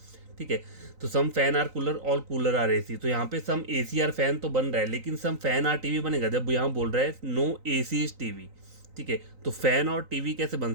ठीक है। तो some fan are cooler, all cooler are AC, तो यहाँ पे सम एसी आर फैन तो बन रहा है, लेकिन सम फैन आर टीवी बनेगा जब यहाँ बोल रहा है नो एसी इज टीवी, ठीक है। तो फैन और टीवी कैसे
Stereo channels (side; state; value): left; late; 3.9 ms